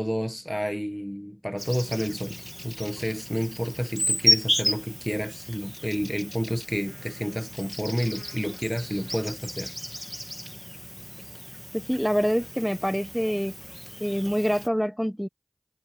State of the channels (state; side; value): identical; both; correlation 1.00